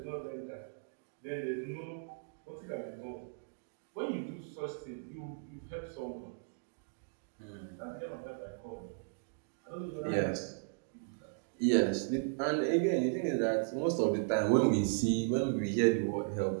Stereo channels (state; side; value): silent; left; digital silence